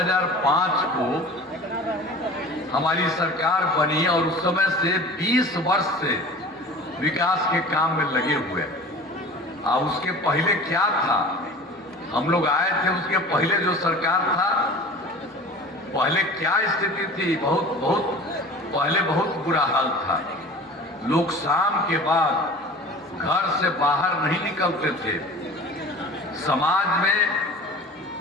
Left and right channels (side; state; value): both; normal; correlation 0.40